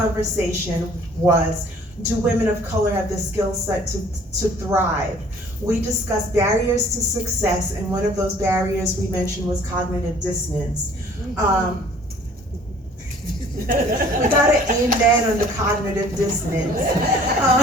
was, do women of color have the skill set to thrive? We discussed barriers to success, and one of those barriers we mentioned was cognitive dissonance. We got an amen on the cognitive dissonance.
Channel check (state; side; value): normal; both; correlation 0.54